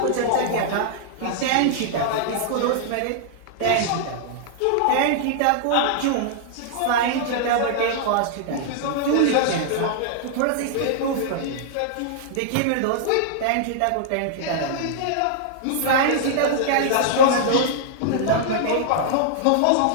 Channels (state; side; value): different; both; correlation -0.01